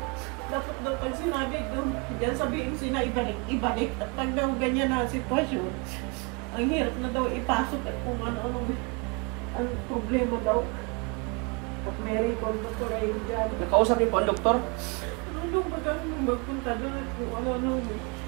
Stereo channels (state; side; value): quieter; left; 31.0 dB